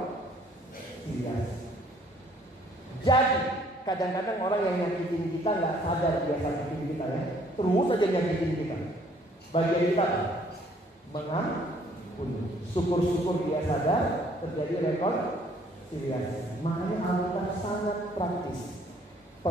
Jadi kadang-kadang orang yang nyakitin kita nggak sadar dia nyakitin kita ya. Terus aja nyakitin kita. Bagian kita mengampuni. Syukur-syukur dia sadar terjadi rekonsiliasi. Makanya Alkitab sangat praktis.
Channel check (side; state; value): both; normal; correlation 0.61